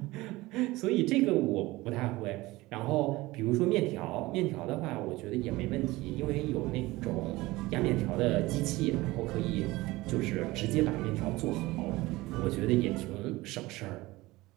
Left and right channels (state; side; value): quieter; left; 19.8 dB